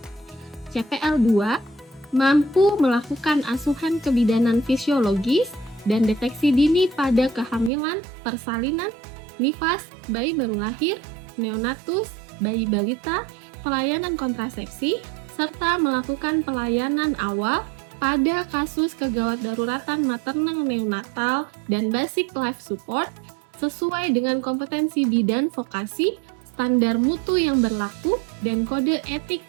CPL 2 mampu melakukan asuhan kebidanan fisiologis dan deteksi dini pada kehamilan, persalinan, nifas, bayi baru lahir, neonatus, bayi balita, pelayanan kontrasepsi, serta melakukan pelayanan awal pada kasus kegawat daruratan maternal neonatal dan basic life support sesuai dengan kompetensi bidan vokasi, standar mutu yang berlaku, dan kode etik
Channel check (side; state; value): left; drops out; at 7.7 s